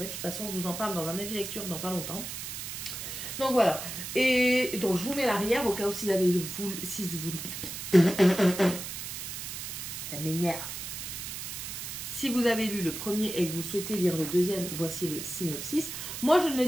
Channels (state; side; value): noise; right; hiss, 7 dB below the sound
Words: De toute façon, je vous en parle dans un avis lecture dans pas longtemps. Donc voilà. Et donc je vous mets l'arrière au cas où si vous... Ça m'énerve. Si vous avez lu le premier et que vous souhaitez lire le deuxième, voici le synopsis. Moi, je ne le